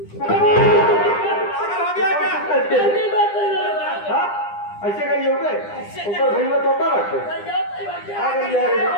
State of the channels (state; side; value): late; right; 9.9 ms